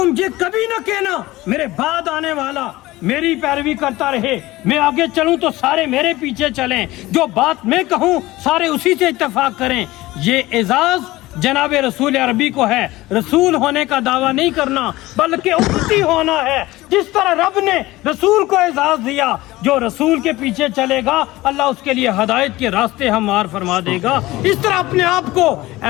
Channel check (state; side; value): quieter; right; 18.5 dB